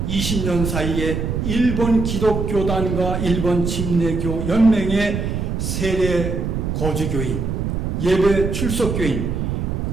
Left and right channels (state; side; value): noise; right; rumble, 2 dB below the sound